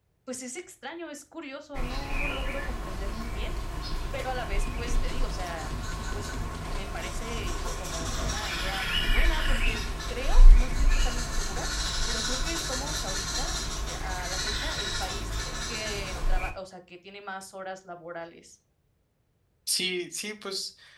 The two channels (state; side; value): identical; both; correlation 1.00